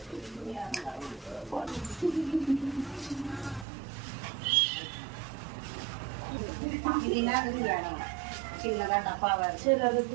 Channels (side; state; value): left; drops out; at 3.7 s